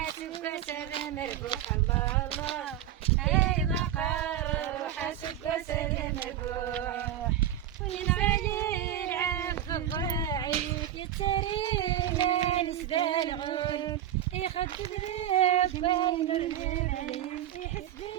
سلام الروح الله اي بقر حاسبك سلام الروح وين علي العفو الراعي يتري نسبة الغول يخدم لك باين الرمال يحس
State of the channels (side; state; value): left; quieter; 11.3 dB